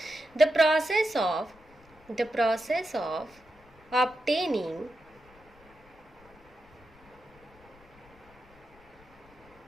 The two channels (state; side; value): noise; left; rumble, 26 dB below the sound